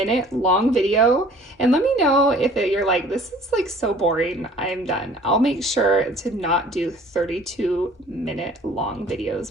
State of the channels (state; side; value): normal; both; correlation 0.51